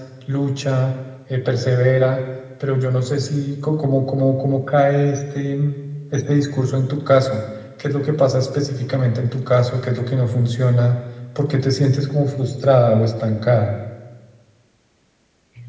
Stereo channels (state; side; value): identical; both; correlation 1.00